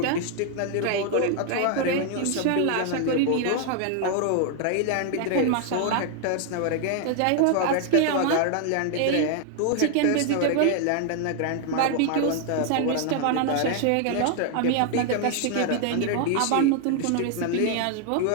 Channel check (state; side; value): different; both; correlation 0.00